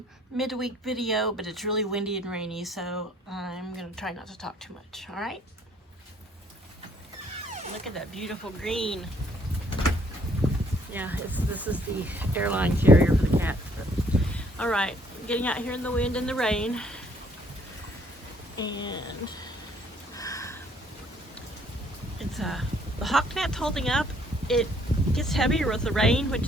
midweek video, but it's really windy and rainy, so I'm going to try not to talk too much, alright? Look at that beautiful green. Yeah, this is the airline carrier for the cats. Alright, getting out here in the wind and the rain. And it's the hawk net's holding up. It gets heavier with the rain, which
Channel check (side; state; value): both; normal; correlation 0.63